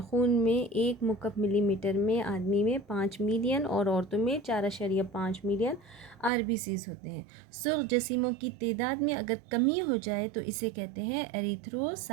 خون میں 1 مکعب ملی میٹر میں آدمی میں 5 ملین اور عورتوں میں 4.5 ملین RBCs ہوتے ہیں۔ سرخ جسیموں کی تعداد میں اگر کمی ہو جائے تو اسے کہتے ہیں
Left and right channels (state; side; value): drops out; left; at 6.3 s